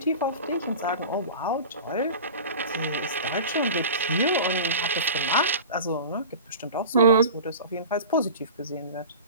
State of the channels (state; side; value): inverted; both; correlation -0.35